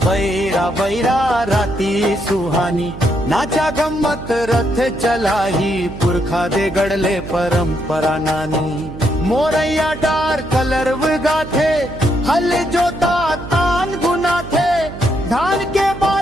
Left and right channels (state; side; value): noise; right; hum, 12 dB below the sound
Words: बैरा राती सुहानी, नाचा गम्मत रथ चलाही, पुरखा दे गड़ले परंपरा नानी। मोरैया डार कलरव गाथे, हल जोता तान गुना थे, धान के